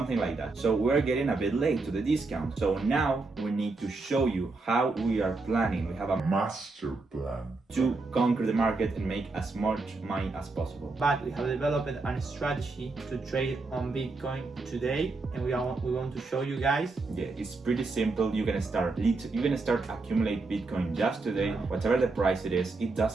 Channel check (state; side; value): quieter; left; 3.6 dB